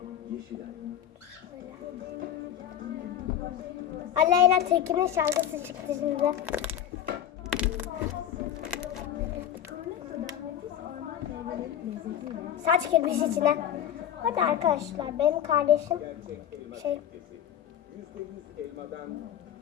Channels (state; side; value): quieter; right; 10.1 dB